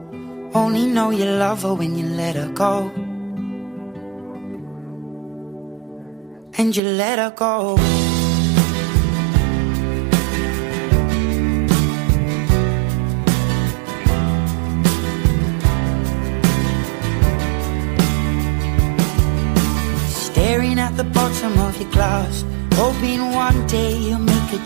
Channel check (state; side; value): drops out; left; at 6.8 s